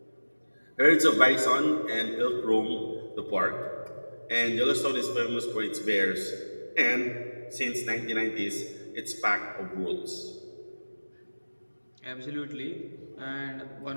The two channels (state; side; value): inverted; both; correlation -1.00